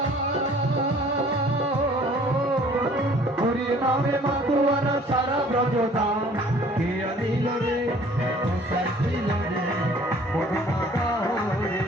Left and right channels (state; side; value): normal; both; correlation 0.54